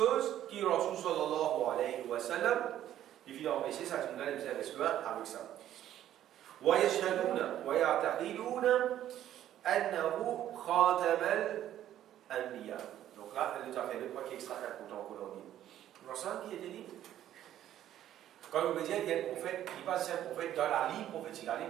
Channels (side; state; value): left; quieter; 11.9 dB